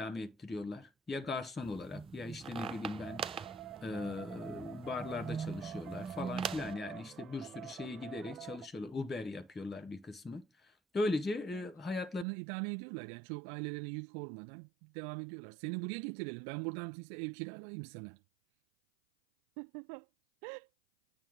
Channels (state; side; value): drops out; left; at 12.2 s